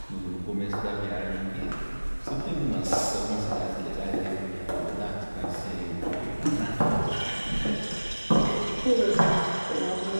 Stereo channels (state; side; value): inverted; both; correlation -1.00